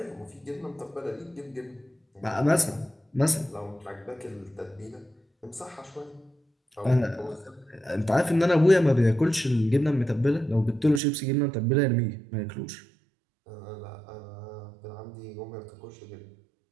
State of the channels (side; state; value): left; drops out; at 11.0 s